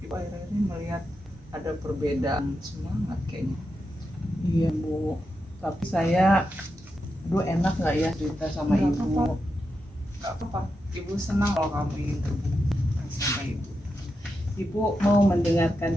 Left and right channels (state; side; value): normal; both; correlation 0.87